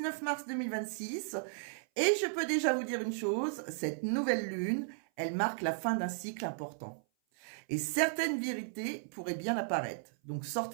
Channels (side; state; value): left; silent; 54 dB below the other